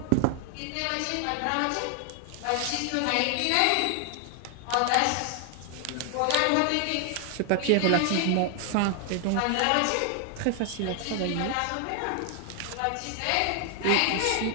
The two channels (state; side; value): different; both; correlation 0.00